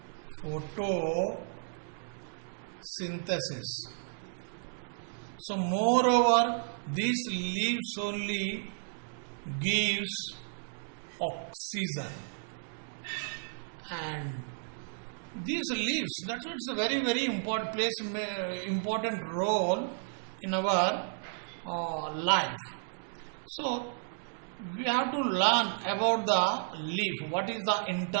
photosynthesis. So moreover, these leaves only gives oxygen. And these leaves, that's why it's a very important role in our life. So we have to learn about the leaf. What is the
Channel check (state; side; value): silent; left; digital silence